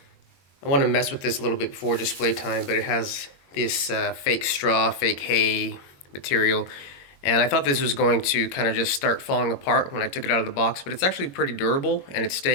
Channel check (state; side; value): late; right; 21 ms